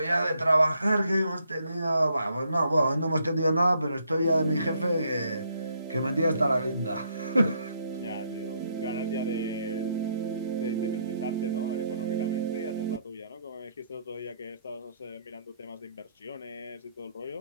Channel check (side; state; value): both; inverted; correlation -0.72